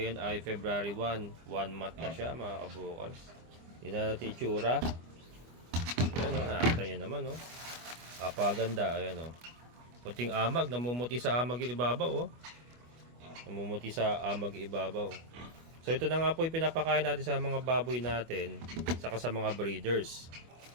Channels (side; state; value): left; late; 25 ms